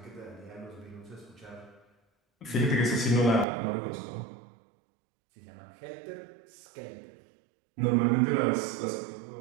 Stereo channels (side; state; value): left; drops out; at 3.5 s